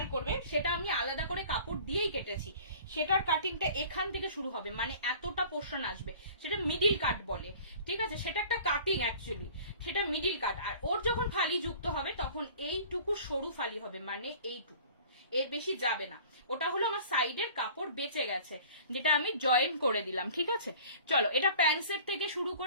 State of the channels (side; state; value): both; inverted; correlation -0.46